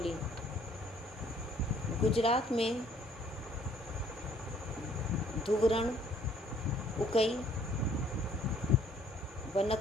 गुजरात में धुवरण, उकई,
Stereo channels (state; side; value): normal; both; correlation 0.61